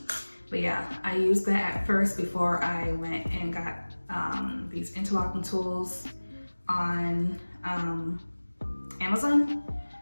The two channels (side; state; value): both; inverted; correlation -1.00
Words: But yeah, I used that at first before I went and got these interlocking tools on Amazon.